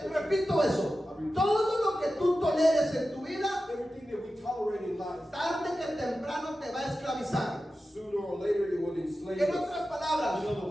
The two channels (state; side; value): normal; both; correlation 0.93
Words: Repito eso, todo lo que tú toleres en tu vida, Everything that we tolerate in life, tarde que temprano te va a esclavizar. sooner or later it will enslave En us. otras palabras, In other